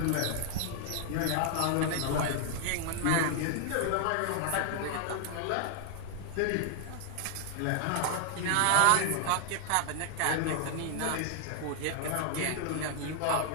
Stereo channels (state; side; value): different; both; correlation 0.00